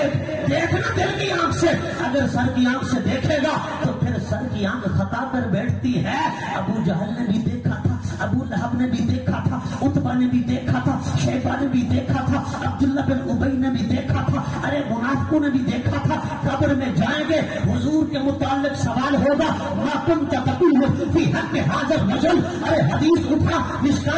دل کی آنکھ سے. اگر سر کی آنکھ سے دیکھے گا تو پھر سر کی آنکھ خطا کر بیٹھتی ہے. ابو جہل نے بھی دیکھا تھا، ابو لہب نے بھی دیکھا تھا، عتبہ نے بھی دیکھا تھا، شیبہ نے بھی دیکھا تھا، عبداللہ بن ابی نے بھی دیکھا تھا. ارے منافقوں نے بھی دیکھا تھا. قبر میں جائیں گے حضور کے متعلق سوال ہوگا ما کنت تقول فی حق حاضر رجل. ارے حدیث اٹھا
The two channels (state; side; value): identical; both; correlation 1.00